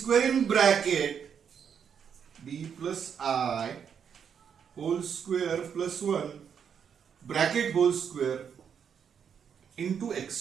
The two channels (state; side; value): quieter; left; 7.5 dB